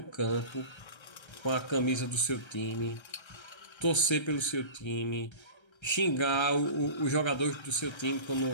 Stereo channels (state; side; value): late; right; 1.3 ms